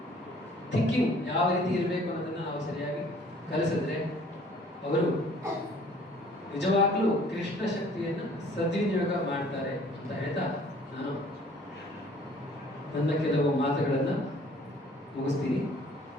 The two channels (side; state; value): both; normal; correlation 0.55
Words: ಥಿಂಕಿಂಗ್ ಯಾವ ರೀತಿ ಇರಬೇಕು ಅನ್ನೋದನ್ನ ನಾವು ಸರಿಯಾಗಿ ಕಲಿಸಿದ್ರೆ ಅವರು ನಿಜವಾಗ್ಲೂ ಕೃಷ್ಣ ಶಕ್ತಿಯನ್ನು ಸದ್ವಿನಿಯೋಗ ಮಾಡ್ತಾರೆ ಅಂತ ಹೇಳ್ತಾ ನಾನು ನನ್ನ ಕೆಲವು ಮಾತುಗಳನ್ನು ಮುಗಿಸ್ತೀನಿ.